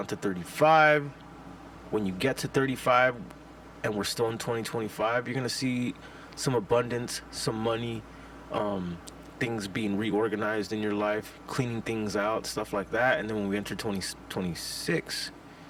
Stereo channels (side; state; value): both; identical; correlation 1.00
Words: to 35, when you get to 35 and we're still in 2025, you're going to see some abundance, some money, um, things being reorganized in your life, cleaning things out, stuff like that. And then when we enter 2026,